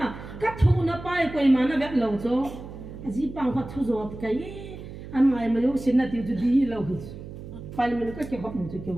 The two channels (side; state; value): right; noise; hum, 12 dB below the sound